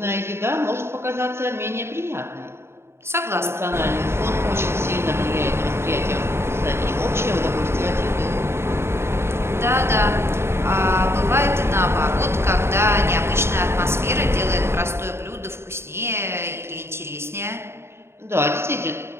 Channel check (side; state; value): left; late; 0.12 ms